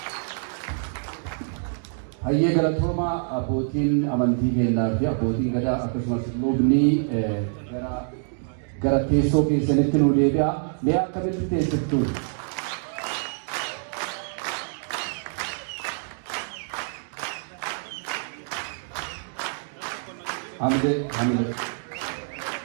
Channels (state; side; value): silent; left; digital silence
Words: Hayye galatoma abbootiin amantii kennaa fi abbootiin gadaa akkasumas lubni gara teessoo keessanitti nu deebi'a. Mee akkamitti teessiftu? Hamide.